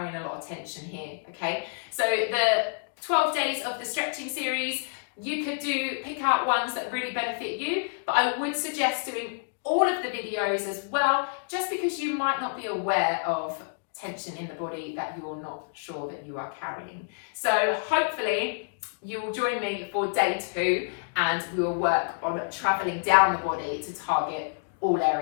a lot of tension here, okay? So the 12 days of the stretching series, you could pick out ones that really benefit you, but I would suggest doing all of the videos as well, just because you might not be aware of tension in the body that you're not sure that you are carrying. So hopefully you will join me for day 2, and we will work on traveling down the body to target all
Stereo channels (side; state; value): right; silent; digital silence